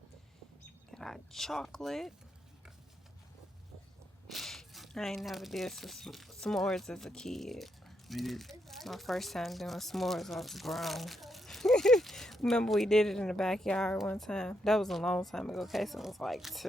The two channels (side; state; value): both; normal; correlation 0.80